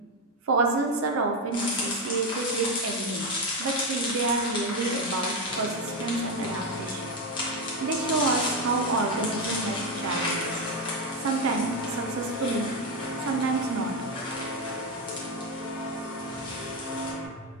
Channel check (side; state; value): both; normal; correlation 0.09